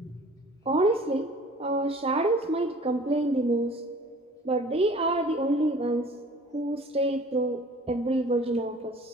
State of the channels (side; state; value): both; normal; correlation 0.48